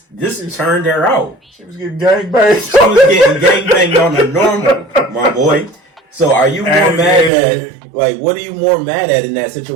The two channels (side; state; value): left; drops out; at 7.3 s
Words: turned her out. She was getting gangbanged. She was getting gangbanged on the normal, my boy. So are you more mad at, like, what are you more mad at in that